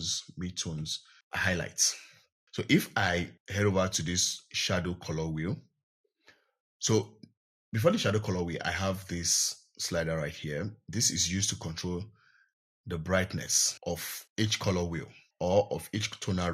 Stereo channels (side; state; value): both; identical; correlation 1.00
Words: midtones, highlights. So if I head over to this shadow color wheel, so before the shadow color wheel, I have this slider right here. This is used to control the brightness of each color wheel or of each tonal